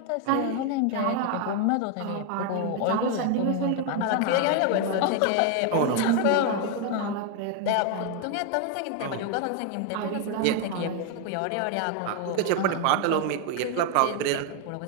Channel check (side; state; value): both; different; correlation 0.01